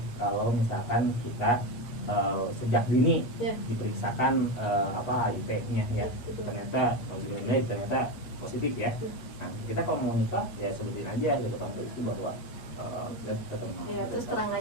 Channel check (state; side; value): late; right; 8.4 ms